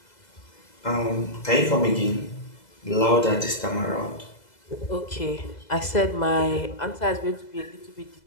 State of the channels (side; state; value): right; late; 2.0 ms